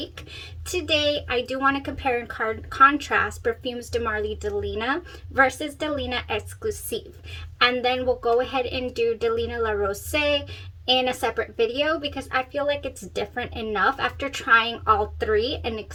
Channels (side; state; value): both; identical; correlation 1.00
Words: Today I do want to compare and contrast Perfumes de Marly Delina versus Delina Exclusif, and then we'll go ahead and do Delina la Rosee in a separate video because I feel like it's different enough after trying all three and